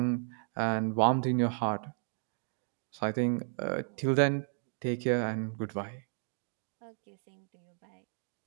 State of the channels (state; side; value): silent; left; 55 dB below the other